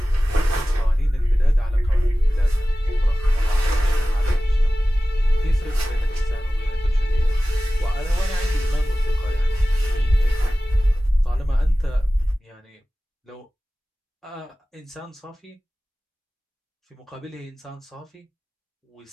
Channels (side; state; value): both; normal; correlation 0.97